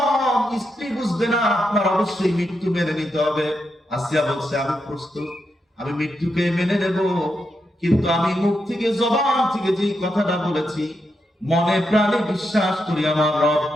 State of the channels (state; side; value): normal; both; correlation 0.84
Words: স্ত্রী বুঝবে না, আপনার অবশ্যই মৃত্যু মেনে নিতে হবে। আসিয়া বলছে আমি প্রস্তুত, আমি মৃত্যুকে মেনে নেব, কিন্তু আমি মুখ থেকে জবান থেকে যে কথাটা বলেছি মনে প্রাণে বিশ্বাস করি আমার রব